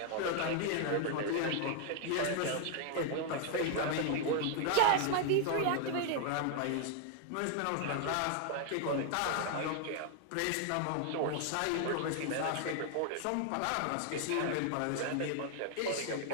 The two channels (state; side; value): different; both; correlation 0.00